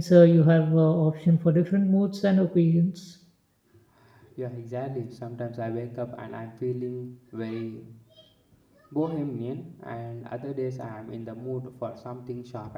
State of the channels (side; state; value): both; identical; correlation 1.00